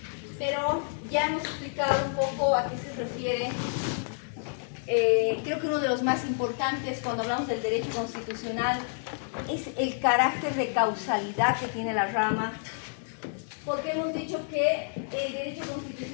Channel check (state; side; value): silent; right; digital silence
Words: Pero ya hemos explicado un poco a qué se refiere. Creo que uno de los más importantes cuando hablamos del derecho constitucional es el carácter de causalidad que tiene la rama, porque hemos dicho que el derecho